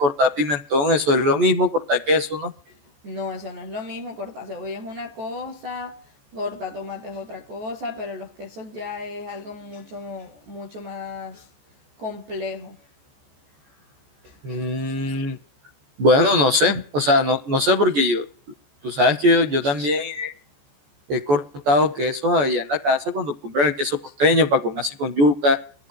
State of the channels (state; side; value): late; left; 14 ms